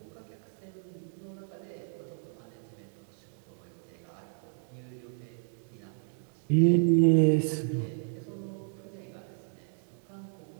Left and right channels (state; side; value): silent; left; 56 dB below the other